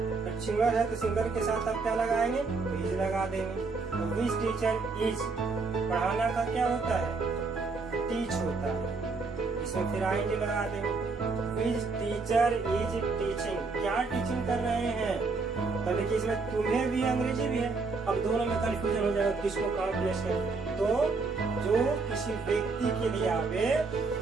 तो सिंगुलर है तो सिंगुलर के साथ आप क्या लगाएंगे, तो इज लगा देंगे। तो विच टीचर इज, पढ़ाना का क्या होता है, टीच होता है, इसमें फिर आई लगा देंगे। विच टीचर इज टीचिंग, क्या टीचिंग कर रहे हैं, तो देखिए इसमें तुम्हें भी अंग्रेजी भी है। अब दोनों में कंफ्यूजन हो जाएगा किसको कहाँ प्लेस करें, तो जो किसी व्यक्ति के लिए आवे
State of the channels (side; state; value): left; quieter; 4.2 dB